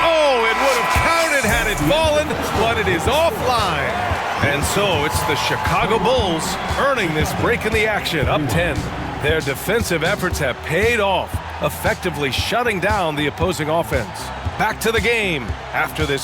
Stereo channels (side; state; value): both; identical; correlation 1.00